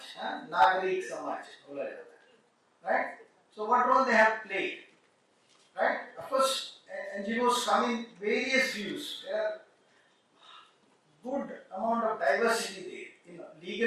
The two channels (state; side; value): identical; both; correlation 1.00